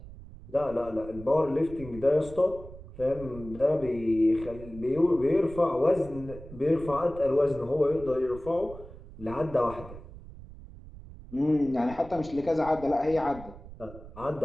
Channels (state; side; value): noise; right; rumble, 16 dB below the sound